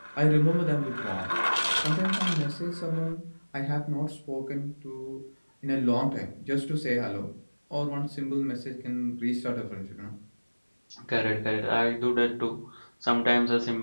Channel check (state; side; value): inverted; both; correlation -1.00